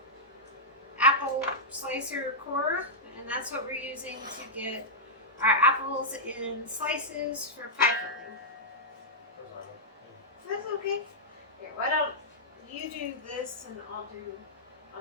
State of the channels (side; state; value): both; normal; correlation -0.08